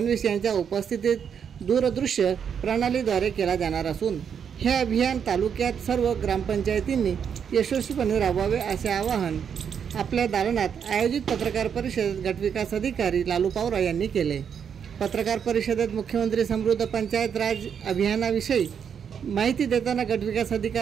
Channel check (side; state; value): left; quieter; 7.6 dB